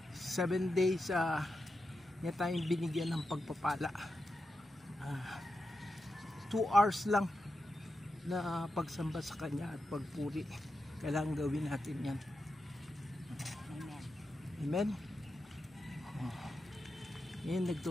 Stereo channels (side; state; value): both; normal; correlation 0.89